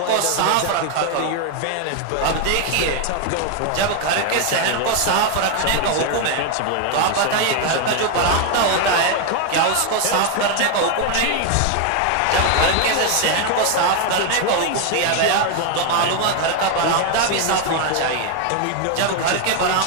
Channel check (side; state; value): both; different; correlation 0.01